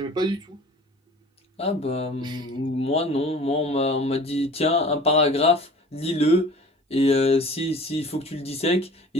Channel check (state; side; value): normal; both; correlation 0.44